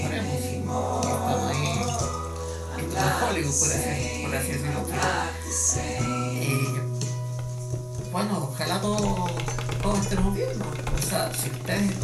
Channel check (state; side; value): identical; both; correlation 1.00